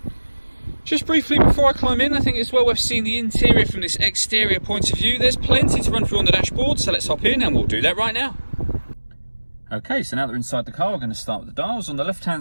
Just briefly before I climb in, I think it's well worth seeing the interior from this exterior point of view. There's plenty to run through on the dashboard, so let's hop in and we'll do that right now. Okay, so now that we're inside the car, we're going to start with the dials. On the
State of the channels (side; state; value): both; inverted; correlation -1.00